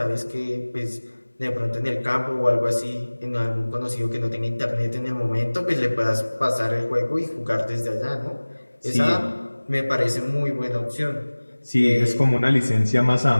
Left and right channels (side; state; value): both; inverted; correlation -1.00